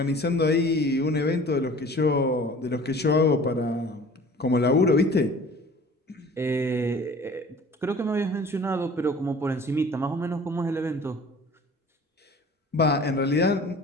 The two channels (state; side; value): normal; both; correlation 0.46